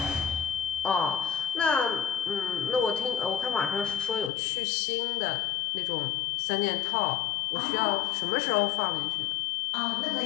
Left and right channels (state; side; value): drops out; right; at 4.3 s